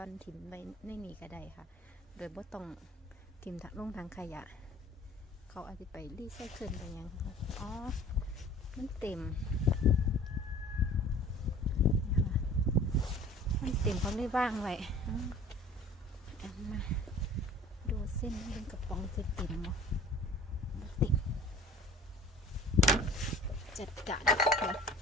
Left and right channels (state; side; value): normal; both; correlation 0.46